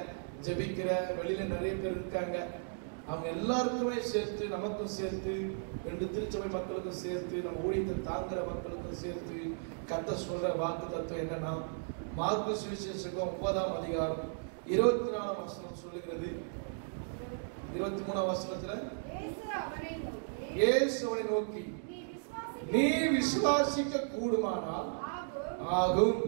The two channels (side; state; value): left; silent; digital silence